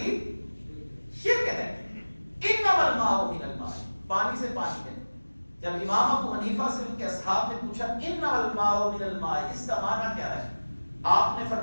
شرک ہے۔ انما الماء من الماء، پانی سے پانی ہے۔ جب امام ابو حنیفہ سے ان کے اصحاب نے پوچھا انما الماء من الماء، اس کا معنی کیا ہے؟ آپ نے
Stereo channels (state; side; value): inverted; both; correlation -1.00